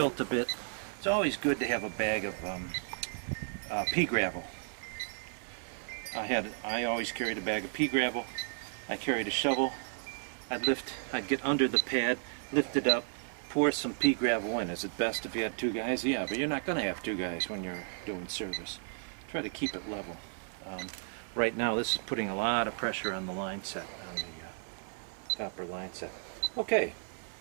a bit. It's always good to have a bag of pea gravel. I always carried a bag of pea gravel. I carried a shovel. I'd get under the pad, lift it up, pour some pea gravel in. Is it best if you had 2 guys? Yeah, but you're not going to have 2 guys when you're doing service. Try to keep it level. Right now, this is putting a lot of pressure on the line set, on the copper line set. Okay,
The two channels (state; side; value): silent; left; 55 dB below the other